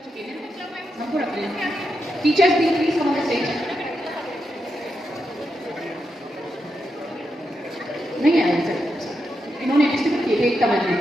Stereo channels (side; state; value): both; normal; correlation 0.85